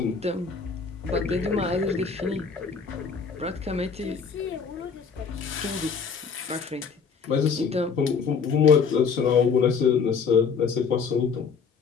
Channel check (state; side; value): quieter; right; 5.7 dB